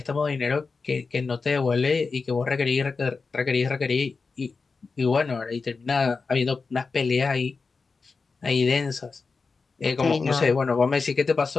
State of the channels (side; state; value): right; quieter; 4.5 dB